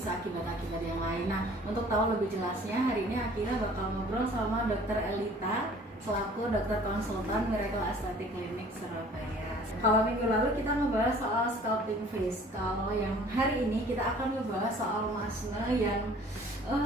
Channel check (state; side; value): normal; both; correlation 0.51